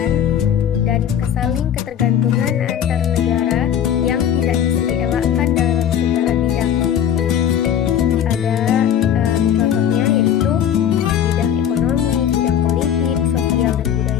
dan kesaling ketergantungan antar negara yang tidak bisa dielakkan dalam segala bidang. Ada contohnya yaitu bidang ekonomi, bidang politik, sosial, dan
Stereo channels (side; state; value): right; quieter; 9.4 dB